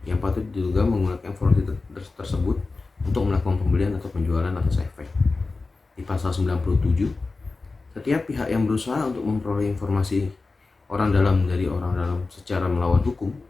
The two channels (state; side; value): quieter; right; 3.7 dB